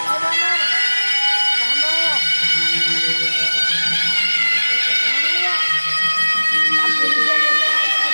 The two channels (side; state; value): both; inverted; correlation -1.00